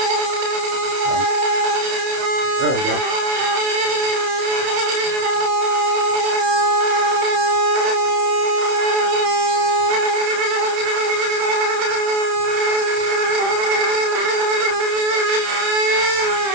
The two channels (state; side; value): late; left; 30 ms